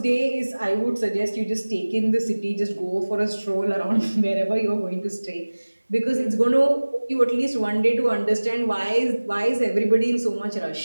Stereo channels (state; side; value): inverted; both; correlation -1.00